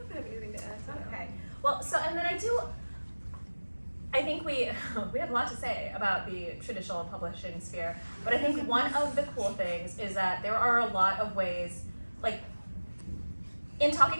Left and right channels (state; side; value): inverted; both; correlation -1.00